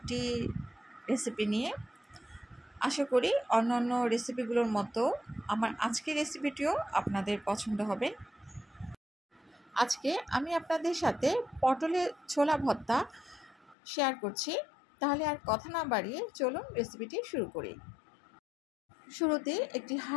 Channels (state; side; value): drops out; right; at 13.8 s